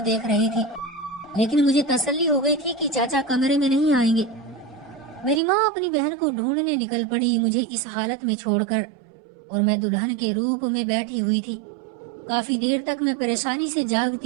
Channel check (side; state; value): left; drops out; at 5.4 s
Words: دیکھ رہی تھی، لیکن مجھے تسلی ہو گئی تھی کہ چاچا کمرے میں نہیں آئیں گے۔ میری ماں اپنی بہن کو ڈھونڈنے نکل پڑی مجھے اس حالت میں چھوڑ کر، اور میں دلہن کے روپ میں بیٹھی ہوئی تھی۔ کافی دیر تک میں پریشانی سے